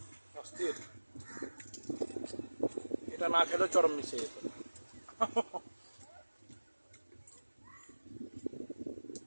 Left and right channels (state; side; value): inverted; both; correlation -1.00